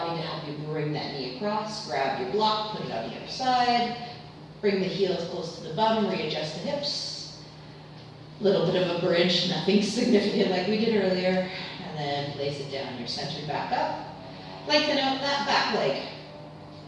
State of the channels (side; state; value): both; identical; correlation 1.00